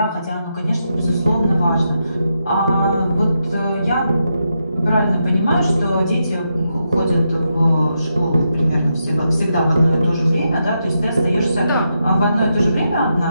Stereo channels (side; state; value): both; inverted; correlation -0.84